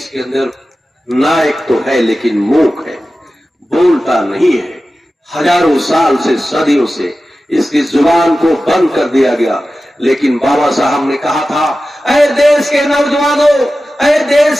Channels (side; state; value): both; normal; correlation 0.94